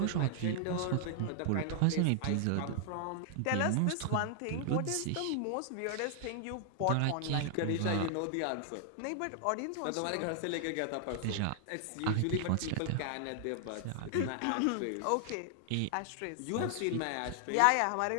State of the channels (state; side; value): different; both; correlation 0.00